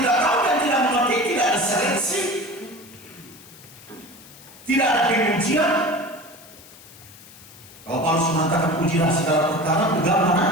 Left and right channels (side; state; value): left; noise; hiss, 21 dB below the sound